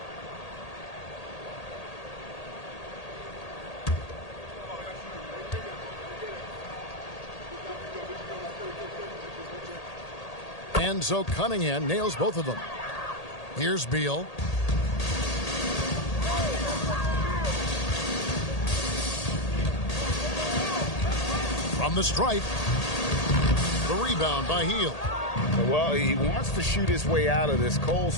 And so Cunningham nails both of them. Here's Beal. From the stripe. The rebound by Hield. Well, he wants to shoot his way out of this cold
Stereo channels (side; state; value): right; late; 1.8 ms